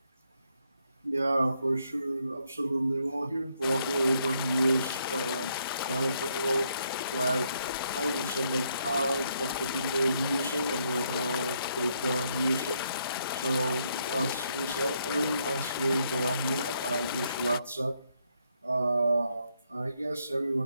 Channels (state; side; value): inverted; both; correlation -0.74